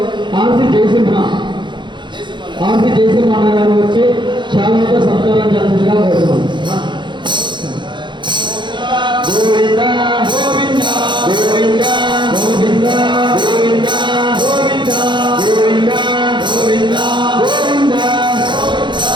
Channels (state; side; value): late; left; 0.23 ms